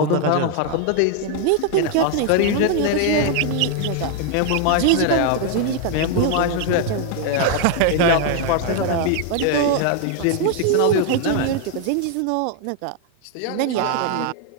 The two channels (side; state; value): both; different; correlation 0.00